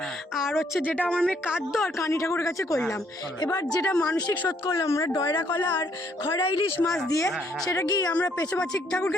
আর হচ্ছে যেটা আমার মেয়ে কাঁদ্য আর কানি ঠাকুরের কাছে করলাম। এবার যেটা মানসিক শোধ করলাম আমরা ডয়রা কলা আর খয়রা ইলিশ মাছ দিয়ে, সেটা কি আমরা পেঁচুপাচি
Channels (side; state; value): both; normal; correlation 0.68